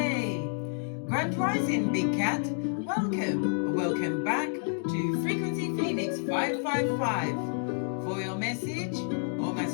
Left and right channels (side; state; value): right; silent; digital silence